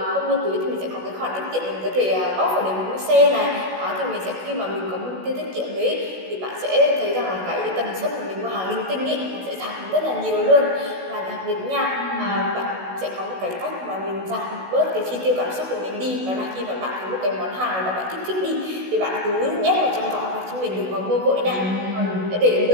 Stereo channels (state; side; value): late; left; 16 ms